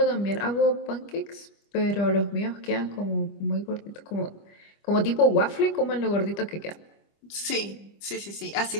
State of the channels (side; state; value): right; late; 25 ms